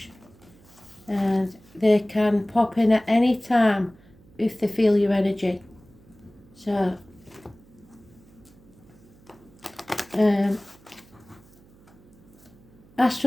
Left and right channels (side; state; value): right; noise; hum, 26 dB below the sound